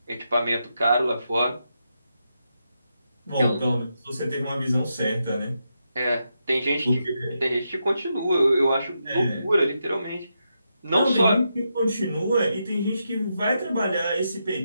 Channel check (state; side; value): inverted; both; correlation -0.84